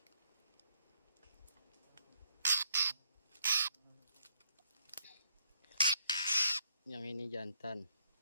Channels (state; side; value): inverted; both; correlation -0.70